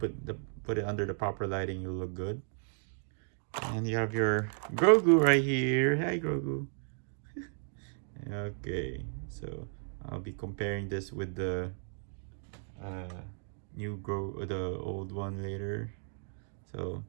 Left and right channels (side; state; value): left; silent; 55 dB below the other